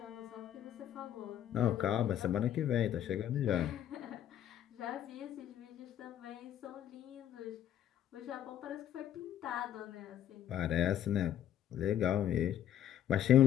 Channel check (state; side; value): quieter; right; 10.9 dB